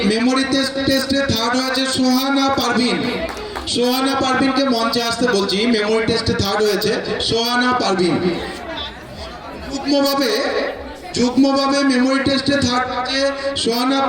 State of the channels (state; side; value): identical; both; correlation 1.00